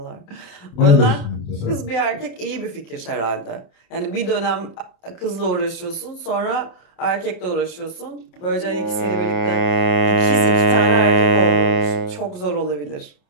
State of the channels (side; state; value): right; late; 28 ms